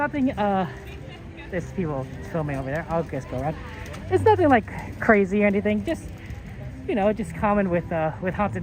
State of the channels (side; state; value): both; identical; correlation 1.00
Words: there's people filming over there. I'll just go around. It's nothing like crazy or anything, just, you know, just common with Haunted